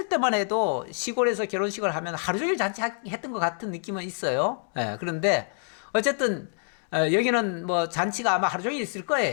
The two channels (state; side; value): silent; right; 60 dB below the other